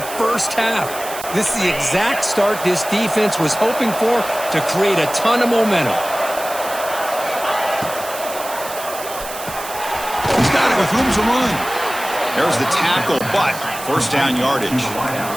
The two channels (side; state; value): right; noise; hiss, 11 dB below the sound